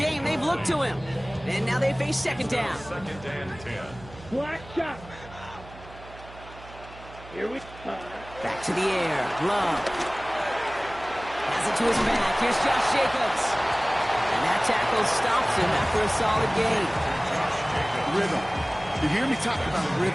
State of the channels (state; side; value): noise; right; hum, 18 dB below the sound